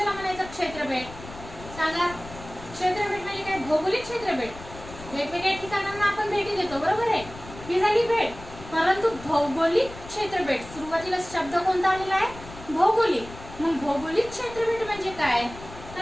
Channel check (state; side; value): noise; left; rumble, 15 dB below the sound